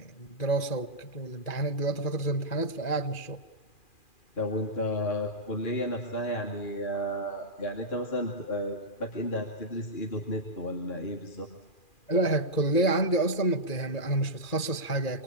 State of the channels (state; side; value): late; right; 2.4 ms